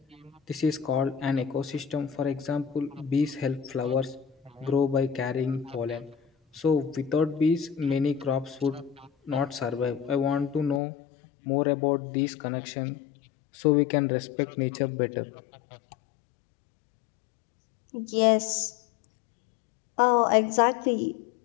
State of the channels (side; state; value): right; drops out; at 10.8 s